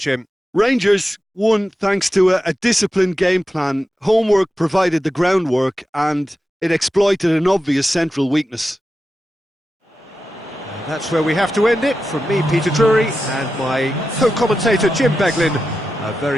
Rangers won thanks to a disciplined game plan. Homework provided the groundwork and it exploited an obvious central weakness. And that's where we have to end it. From me, Peter Drury, and my co-commentator, Jim Beglin. A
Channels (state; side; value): normal; both; correlation 0.91